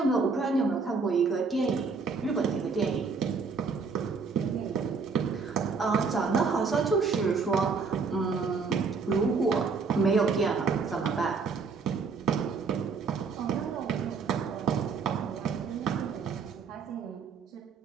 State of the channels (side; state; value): left; quieter; 4.8 dB